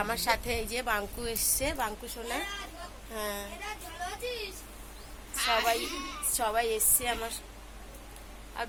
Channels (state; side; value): identical; both; correlation 1.00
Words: আমার সাথে এই যে বাঙ্কু এসছে, বাঙ্কু সোনা। হ্যাঁ, সবাই সবাই এসছে আমার। আর